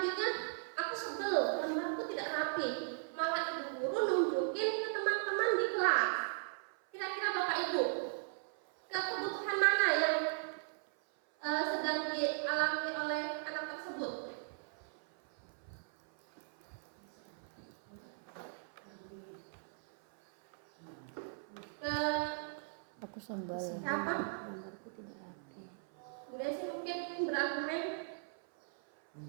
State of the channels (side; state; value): left; silent; 53 dB below the other